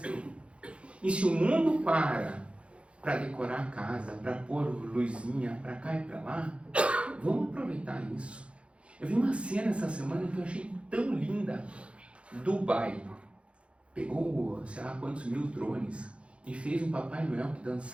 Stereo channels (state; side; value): late; left; 0.060 ms